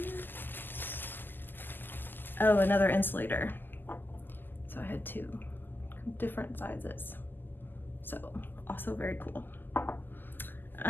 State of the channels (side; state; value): right; late; 0.091 ms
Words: oh, another insulator. So I had two different sizes. So also very cool.